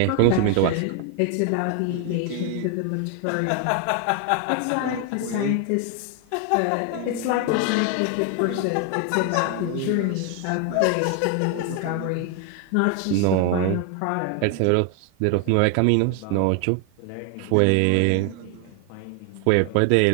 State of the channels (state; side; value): different; both; correlation 0.00